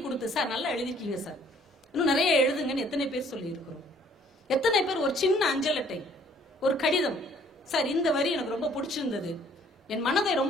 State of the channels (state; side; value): normal; both; correlation 0.59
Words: சார் நல்லா எழுதிருக்கீங்க சார், இன்னும் நிறைய எழுதுங்கன்னு எத்தனை பேர் சொல்லி இருக்கிறோம்? எத்தனை பேர் ஒரு சின்ன அஞ்சல் அட்டை, ஒரு கடிதம், சார் இந்த வரி எனக்கு ரொம்ப பிடிச்சிருந்தது, என் மனதை